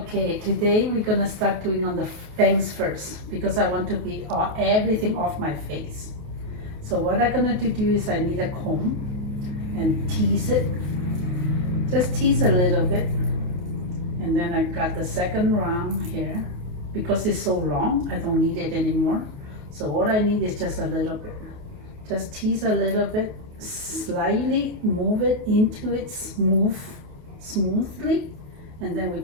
today we're gonna start doing on the bangs first because I want to be everything off my face. So what I'm gonna do is I need a comb and tease it. Just tease a little bit. And then I got the second round here. Because it's so long, I don't need it anymore. So what I need is just a little bit. Just tease a little bit, slightly move it into it smoothly, and then we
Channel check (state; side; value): late; left; 28 ms